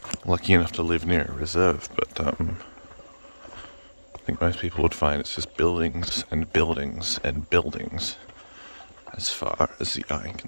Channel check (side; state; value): both; inverted; correlation -1.00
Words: Lucky enough to live near a reserve, but I think most people would find it's just buildings and buildings and buildings as far as the eye